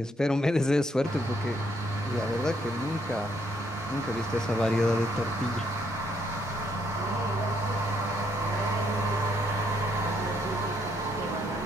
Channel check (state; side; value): normal; both; correlation 0.72